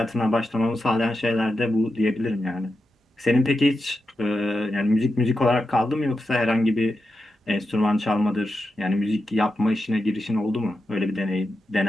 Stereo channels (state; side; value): normal; both; correlation 0.89